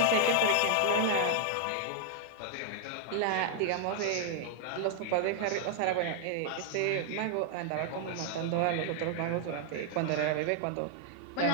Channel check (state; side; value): different; both; correlation 0.00